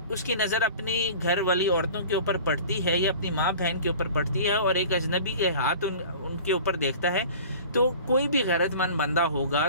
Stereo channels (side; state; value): both; inverted; correlation -0.41